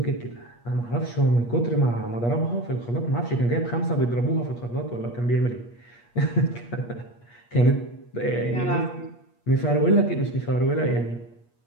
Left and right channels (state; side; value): late; right; 8.4 ms